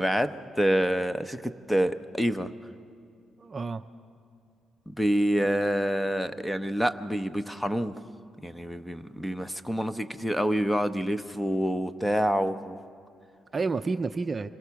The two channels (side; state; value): both; normal; correlation 0.95